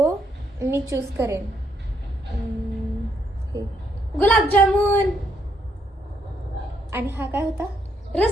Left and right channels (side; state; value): both; normal; correlation 0.74